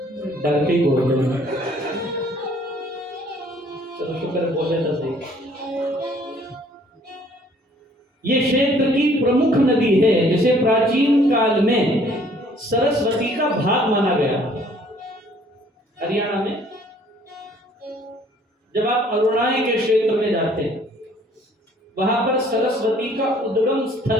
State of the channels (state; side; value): normal; both; correlation 0.59